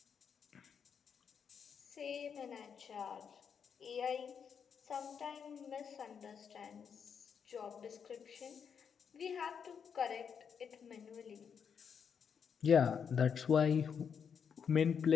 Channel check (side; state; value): right; quieter; 7.0 dB